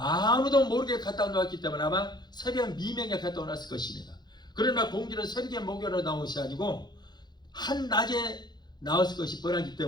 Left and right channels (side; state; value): right; late; 0.21 ms